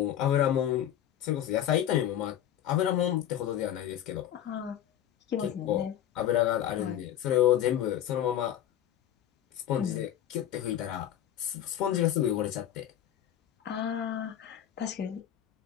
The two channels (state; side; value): quieter; right; 11.1 dB